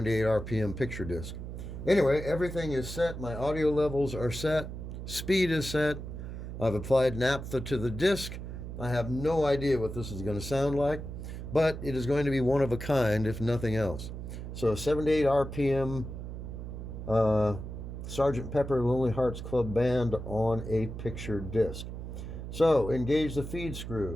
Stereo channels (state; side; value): noise; right; hum, 8 dB below the sound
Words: RPM picture disc. Anyway, everything is set. My audio levels are set. Speed is set. I've applied naphtha to the disc. I have no idea what this is going to sound like, but it is going to be one of a kind, if nothing else. So 78 RPM Sgt. Pepper Lonely Hearts Club Band on a picture disc. So engage the feed